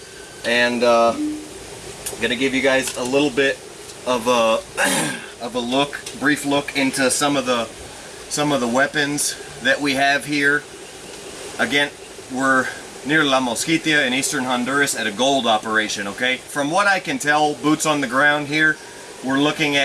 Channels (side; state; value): both; identical; correlation 1.00